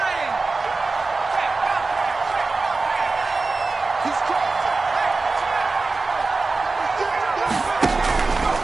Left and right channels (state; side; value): quieter; left; 3.8 dB